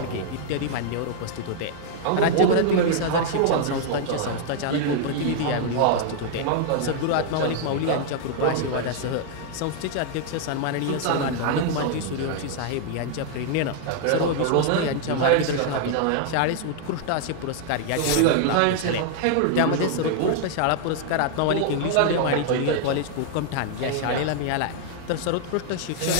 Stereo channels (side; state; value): both; different; correlation -0.01